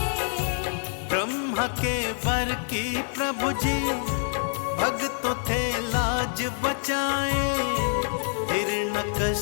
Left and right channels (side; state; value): right; silent; 61 dB below the other